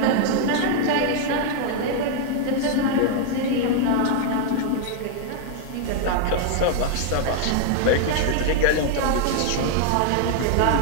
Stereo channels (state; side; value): different; both; correlation 0.00